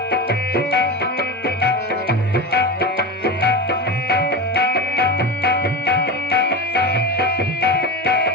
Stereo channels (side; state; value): both; normal; correlation 0.24